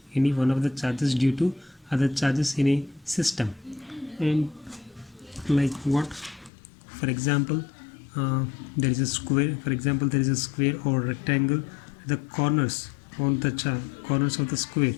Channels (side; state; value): right; drops out; at 6.5 s